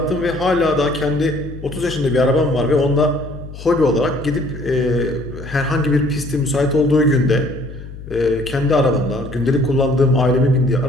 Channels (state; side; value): noise; left; hum, 13 dB below the sound